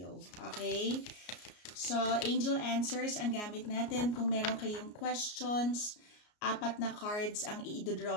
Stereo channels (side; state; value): right; late; 33 ms